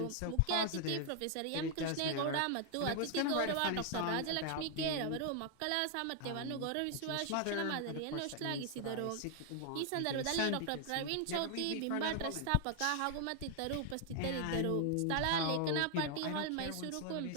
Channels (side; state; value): both; different; correlation 0.00